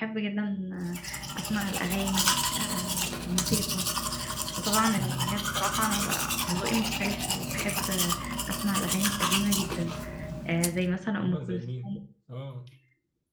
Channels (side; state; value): both; identical; correlation 1.00